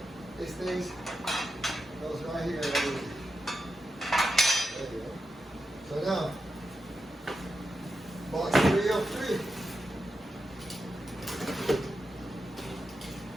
this thing goes right here. There you go. So now, box 3 of 3.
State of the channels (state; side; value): normal; both; correlation 0.88